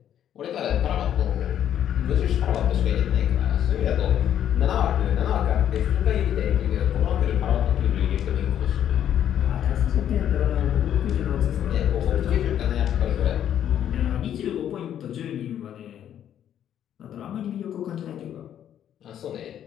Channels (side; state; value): right; quieter; 10.2 dB